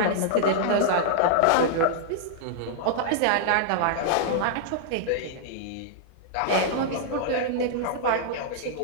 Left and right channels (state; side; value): different; both; correlation -0.01